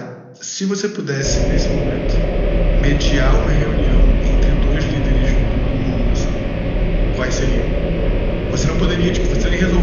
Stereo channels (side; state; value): both; identical; correlation 1.00